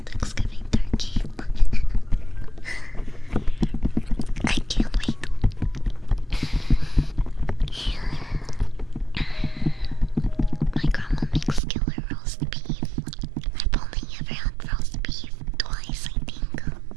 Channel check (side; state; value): left; drops out; at 11.6 s